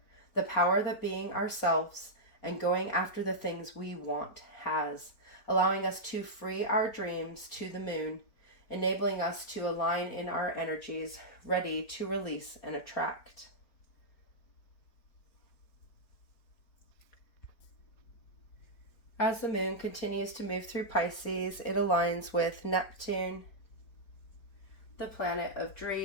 the power that being ourselves and going after the things we want has, allowing us to free our dreams to the moon, enabling us to align in our energies, ready to release and attract. As the moon continues to move through Pisces, it aligns with Neptune, the planet of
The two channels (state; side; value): late; right; 4.3 ms